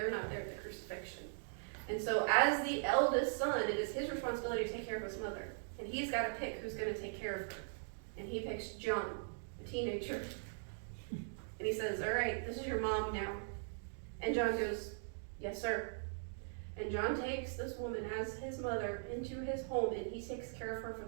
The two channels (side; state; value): left; silent; digital silence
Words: not there at the crucifixion. And so as the eldest son, it is his responsibility to take care of his mother. And he's got to pick who's going to take care of her. And he picks John, a teenager. And he says, all right, this is your mom now. And John goes, yes, sir. And John takes this woman as his mother into his home, and he takes care of her for